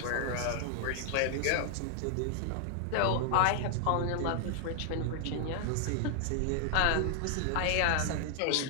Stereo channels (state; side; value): different; both; correlation 0.00